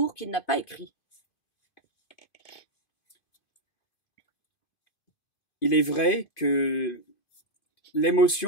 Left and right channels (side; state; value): right; late; 2.5 ms